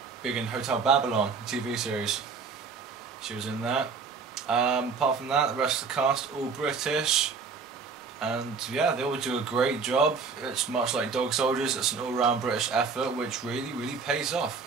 big in Hotel Babylon TV series. She was in that. Apart from that, the rest of the cast all British, and yeah, they all do a great job. It's much like Dog Soldiers. It's an all-round British effort, which really pays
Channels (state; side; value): quieter; left; 5.1 dB